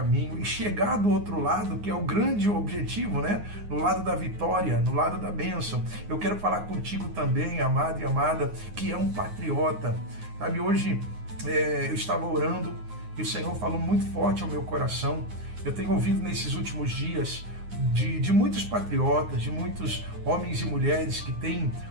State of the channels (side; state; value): left; late; 9.6 ms